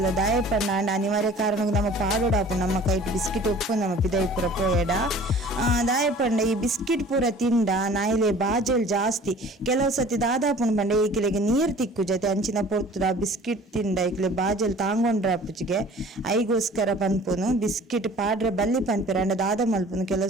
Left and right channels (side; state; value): both; normal; correlation 0.47